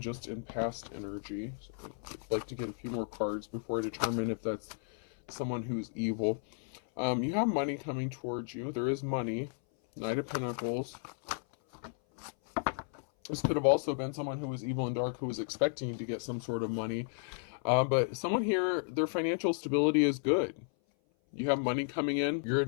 in past energy. So I'd like to get a few more cards before I determine if that's someone who's evil. You have money coming towards you. There is money. Knight of Pentacles. This could have also been someone who was evil and dark, who was expecting to get some sort of money. But someone here, their financial stability is good. You have money coming in. You're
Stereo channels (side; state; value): right; silent; 55 dB below the other